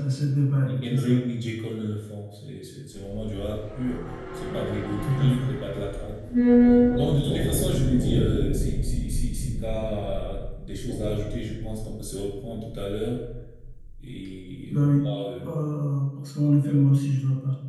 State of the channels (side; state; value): both; identical; correlation 1.00